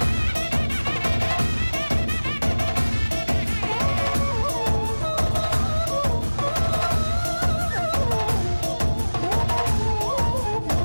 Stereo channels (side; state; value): both; inverted; correlation -1.00